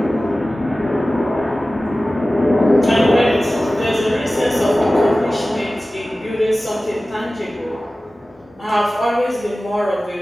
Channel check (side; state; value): both; normal; correlation 0.96